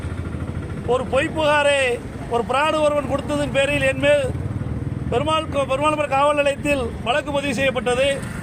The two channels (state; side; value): identical; both; correlation 1.00